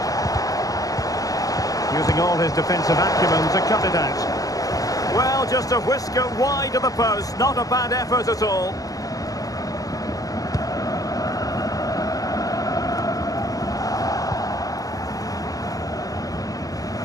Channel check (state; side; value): late; right; 0.17 ms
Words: Using all his defensive acumen to cut it out. Well, just a whisker wide of the post. Not a bad effort at all.